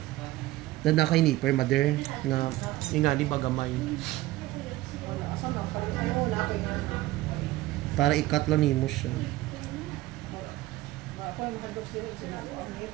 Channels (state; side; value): quieter; left; 17.1 dB